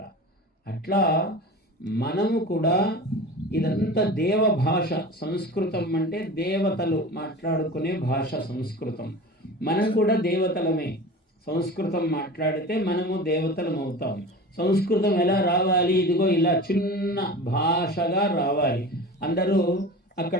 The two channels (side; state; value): both; normal; correlation 0.34